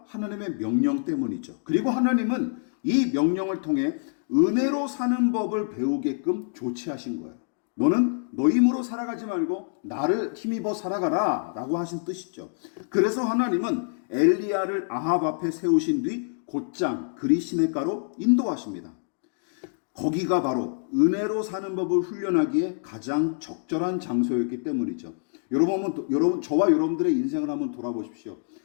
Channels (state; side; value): silent; right; digital silence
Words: 하나님의 명령 때문이죠. 그리고 하나님은 이 명령을 통해 은혜로 사는 법을 배우게끔 조치하신 거예요. 너는 너 힘으로 살아가지 말고 나를 힘입어 살아가라 라고 하신 뜻이죠. 그래서 하나님은 엘리야를 아합 앞에 세우신 뒤 곧장 그리 시냇가로 인도하십니다. 거기가 바로 은혜로 사는 법을 훈련하기에 가장 적절한 장소였기 때문이죠. 여러분, 저와 여러분들의 인생을 한번 돌아보십시오.